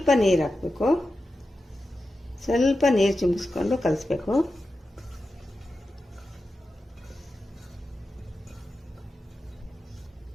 ನೀರು ಹಾಕಬೇಕು. ಸ್ವಲ್ಪ ನೀರು ಚಿಮ್ಮಿಸ್ಕೊಂಡು ಕಲಿಸ್ಬೇಕು.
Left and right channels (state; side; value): normal; both; correlation 0.91